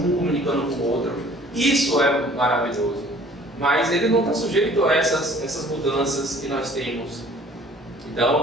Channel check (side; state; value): both; normal; correlation 0.53